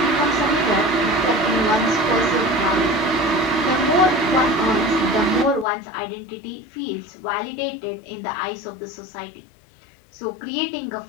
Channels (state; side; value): drops out; right; at 5.7 s